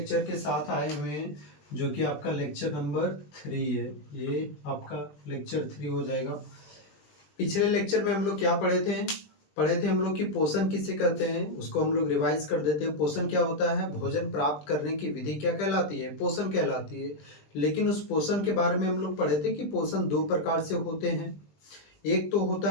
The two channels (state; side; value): late; right; 20 ms